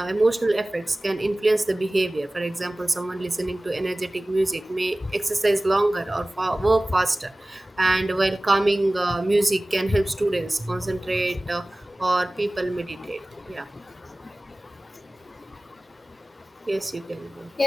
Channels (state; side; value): normal; both; correlation 0.98